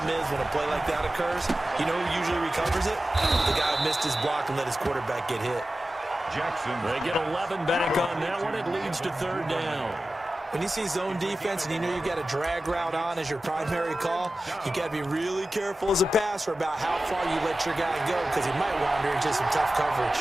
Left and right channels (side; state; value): both; normal; correlation 0.95